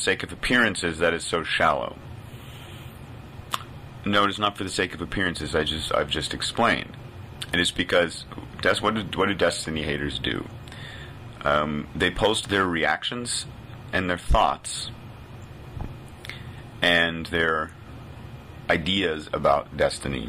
of appearances that is so shallow? No, it is not for the sake of appearances. I've just explained. It is because what do Destiny haters do? They post their reactions and their thoughts and their ideas about Destiny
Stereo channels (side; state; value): both; identical; correlation 1.00